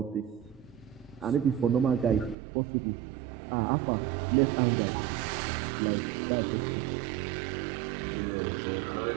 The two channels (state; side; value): drops out; left; at 2.4 s